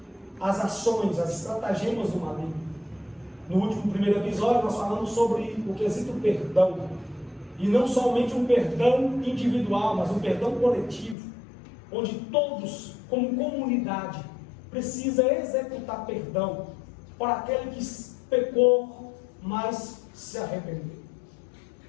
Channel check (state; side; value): drops out; right; at 11.2 s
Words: as ações, as estratagemas do maligno. No primeiro episódio, nós falamos sobre o quesito perdão. E não somente um perdão individual, mas um perdão coletivo, onde todos, como comunidade, precisa executar perdão para aquele que pecou, mas se arrependeu.